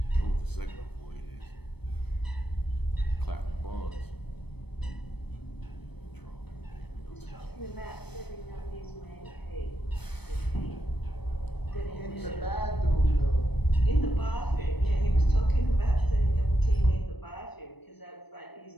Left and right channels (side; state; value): right; late; 0.98 ms